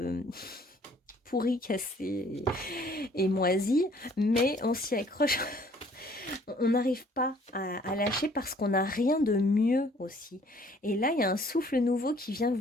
pourries, cassées et moisies, mais on s'y accroche. On n'arrive pas à lâcher parce qu'on n'a rien de mieux aussi. Et là, il y a un souffle nouveau qui vient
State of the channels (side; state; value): both; normal; correlation 0.59